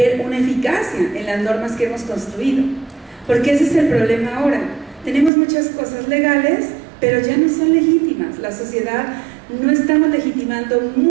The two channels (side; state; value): left; drops out; at 5.3 s